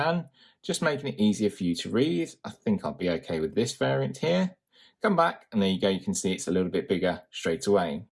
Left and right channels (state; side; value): identical; both; correlation 1.00